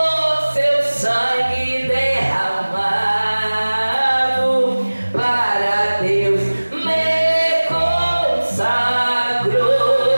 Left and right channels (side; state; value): both; inverted; correlation -1.00